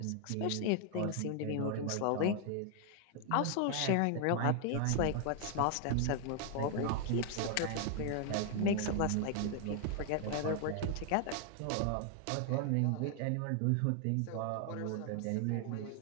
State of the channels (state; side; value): different; both; correlation 0.00